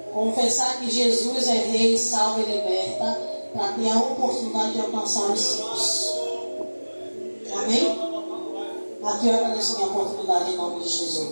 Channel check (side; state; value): both; inverted; correlation -1.00